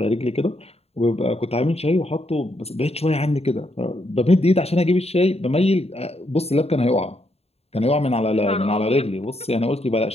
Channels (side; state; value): right; late; 0.30 ms